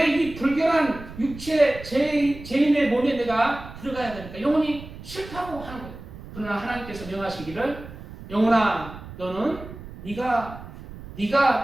이 불결한 육체 죄인의 몸에 내가 들어가야 됩니까? 영혼이 싫다고 하는 거예요. 그러나 하나님께서 명하시기를 영혼아 너는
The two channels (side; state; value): right; noise; rumble, 14 dB below the sound